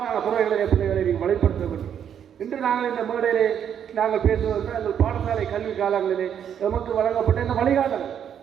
துறைகளை பிள்ளைகளை நீங்கள் வழிப்படுத்த வேண்டும். இன்று நாங்கள் இந்த மேடையிலே நாங்கள் பேசுவதற்கு எங்கள் பாடசாலை கல்வி காலங்களிலே நமக்கு வழங்கப்பட்ட இந்த வழிகாட்டல்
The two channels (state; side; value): quieter; left; 8.8 dB